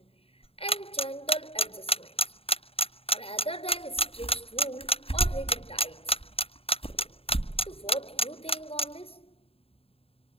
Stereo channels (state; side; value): late; right; 0.28 ms